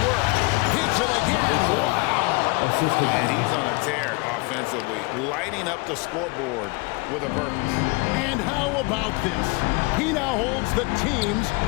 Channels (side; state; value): right; quieter; 27.6 dB